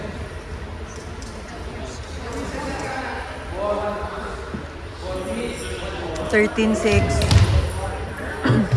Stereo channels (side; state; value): both; identical; correlation 1.00